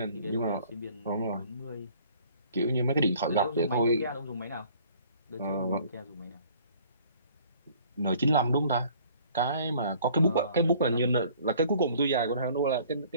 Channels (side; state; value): both; inverted; correlation -0.55